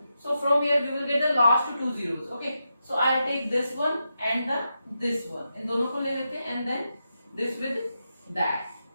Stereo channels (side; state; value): both; inverted; correlation -0.87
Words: So from here we will get the last two zeros. Okay. So I will take this one and this one. इन दोनों को ले लेते हैं and then this with that.